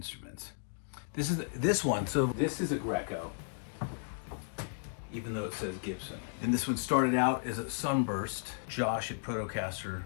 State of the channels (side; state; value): right; silent; digital silence